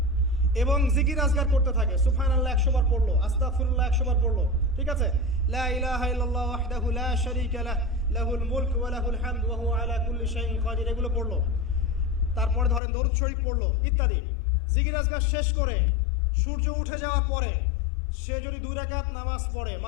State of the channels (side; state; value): right; drops out; at 12.8 s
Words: এবং জিকির আজগার করতে থাকে, সুবহানাল্লাহ 100 বার পড়লো, আস্তাগফিরুল্লাহ 100 বার পড়লো, ঠিক আছে, লা ইলাহা ইল্লাল্লাহ ওয়াহদাহু লা শারীকা লাহ লাহুল মুলক ওয়া লাহুল হামদ ওয়া হুয়া আলা কুল্লি শাইইন কাদির, এগুলো পড়লো, তারপরে ধরেন দরুদ শরীফ পড়লো ইত্যাদি। জিকির আজগার শেষ করে সূর্য উঠে যাওয়ার পরে সে যদি 2 রাকাত নামাজ পড়ে,